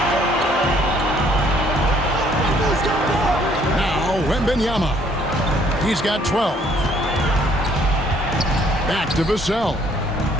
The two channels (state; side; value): normal; both; correlation 0.63